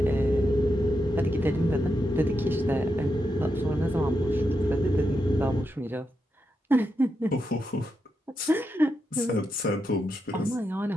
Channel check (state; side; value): normal; both; correlation 0.85